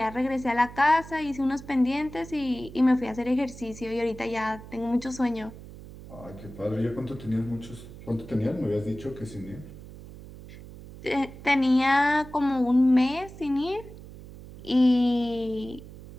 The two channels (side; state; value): right; noise; hum, 16 dB below the sound